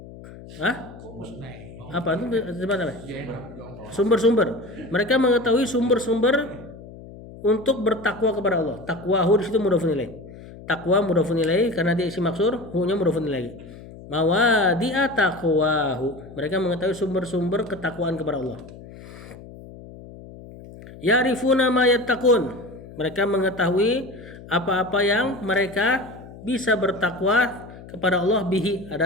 Apa itu tempat apa? Sumber-sumber. Mereka mengetahui sumber-sumber untuk bertakwa kepada Allah. Takwahu di situ mudhofun ilaih. Takwa mudhofun ilaih karena dia isi maksur, hu-nya mudhofun ilaih. Mawadi'a taqwahu. Mereka mengetahui sumber-sumber ketakwaan kepada Allah. Ya'rifuna ma yattaqun. Mereka mengetahui apa-apa yang mereka bisa bertakwa kepada Allah bihi.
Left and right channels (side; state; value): left; noise; hum, 17 dB below the sound